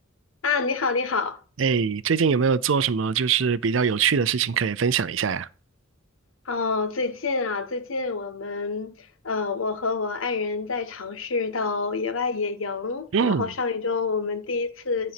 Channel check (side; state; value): both; normal; correlation -0.07